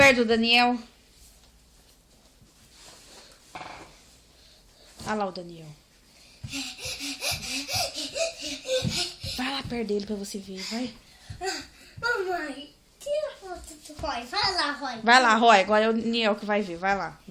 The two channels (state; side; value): identical; both; correlation 1.00